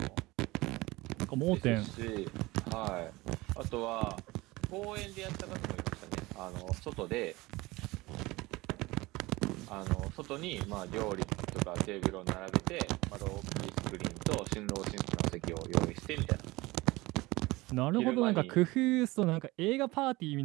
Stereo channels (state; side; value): quieter; left; 21.1 dB